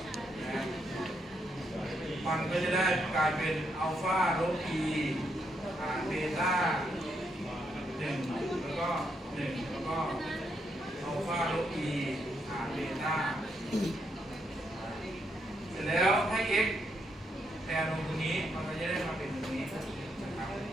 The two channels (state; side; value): normal; both; correlation 0.78